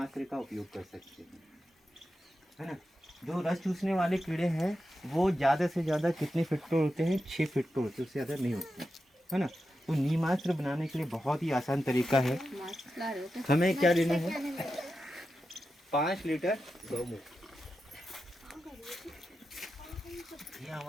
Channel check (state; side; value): normal; both; correlation 0.90